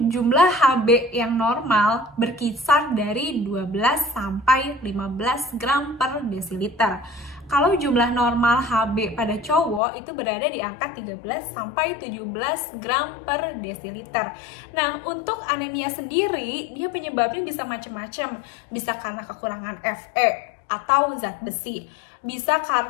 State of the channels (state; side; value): drops out; right; at 9.8 s